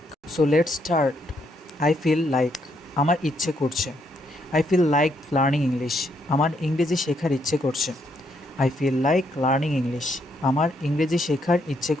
So let's start. I feel like আমার ইচ্ছে করছে। I feel like learning English. আমার ইংরেজি শেখার ইচ্ছে করছে। I feel like learning English. আমার ইংরেজি শেখার ইচ্ছে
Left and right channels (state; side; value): normal; both; correlation 0.74